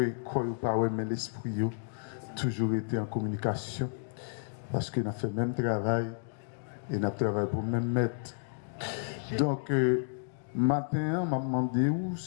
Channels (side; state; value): right; silent; digital silence